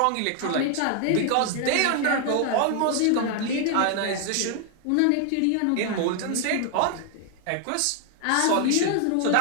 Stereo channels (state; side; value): different; both; correlation 0.00